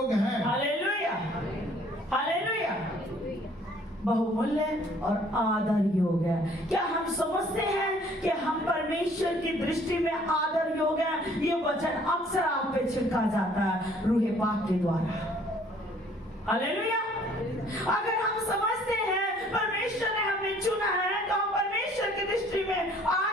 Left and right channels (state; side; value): normal; both; correlation 0.58